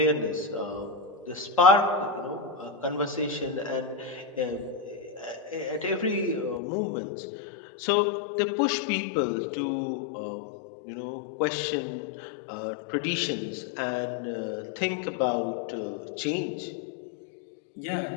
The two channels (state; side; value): drops out; right; at 6.6 s